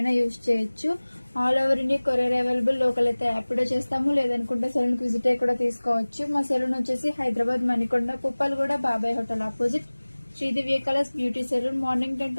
యూజ్ చేయొచ్చు. All over India courier available. Local అయితే యాప్లో చేస్తాము, లేదనుకుంటే సెలూన్కి విజిట్ అయ్యి కూడా తీసుకోవచ్చు. మా సెలూన్ వచ్చేసి Hyderabad Manikonda Puppalaguda Babai hotel opposite Shri Divya colours beauty salon. Morning 10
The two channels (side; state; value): both; inverted; correlation -1.00